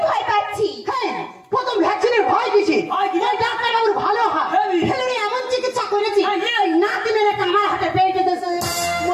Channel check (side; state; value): both; identical; correlation 1.00